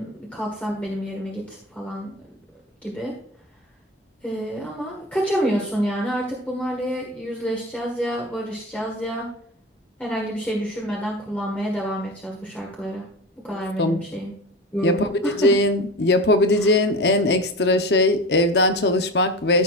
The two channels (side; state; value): both; normal; correlation 0.29